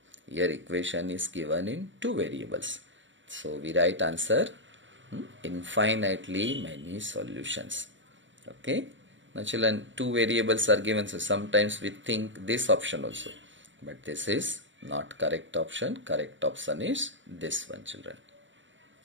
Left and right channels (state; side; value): late; left; 0.55 ms